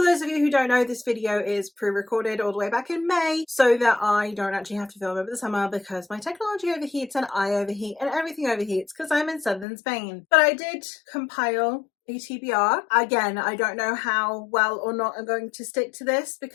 those of you who don't know, this video is pre-recorded all the way back in May so that I don't actually have to film over the summer because my technology overheats and I overheat and everything overheats because I'm in southern Spain. But I did compile a TBR. Again, I don't know how well or not I'm going to stick to this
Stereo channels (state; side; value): drops out; right; at 9.7 s